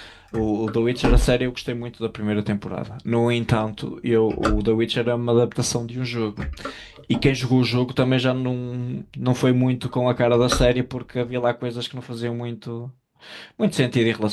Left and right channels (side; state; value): both; identical; correlation 1.00